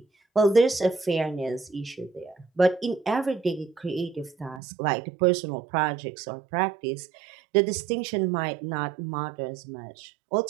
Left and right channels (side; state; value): left; drops out; at 4.6 s